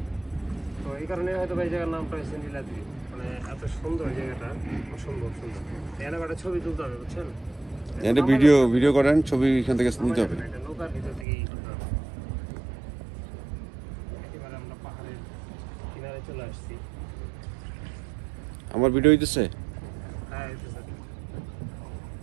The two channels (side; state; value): left; drops out; at 11.2 s